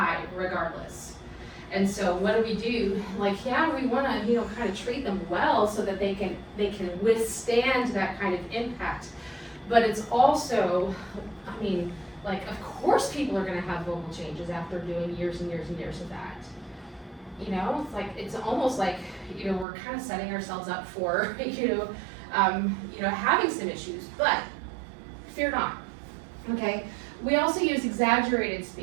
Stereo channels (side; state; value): left; drops out; at 19.7 s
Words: regardless. And so what do? Like, yeah, we wanna, kind of treat them well so that they can withstand that kind of impact. But it's also, of course people are gonna have vocal changes after doing years and years and years of that. It's almost like, we're kind of setting ourselves up for, having some issues, but fear not, okay? We also use exaggerated